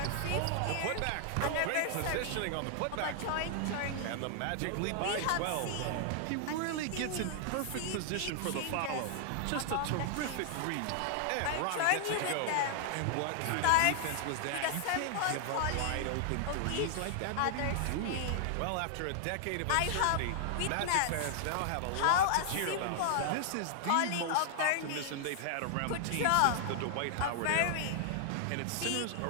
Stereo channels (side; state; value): both; different; correlation 0.00